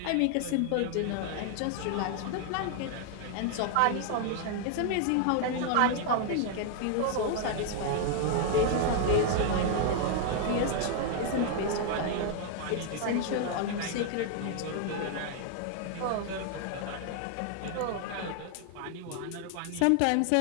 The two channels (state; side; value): different; both; correlation 0.00